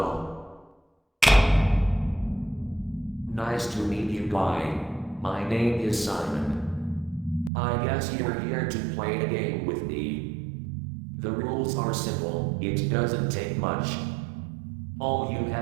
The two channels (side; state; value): left; drops out; at 7.5 s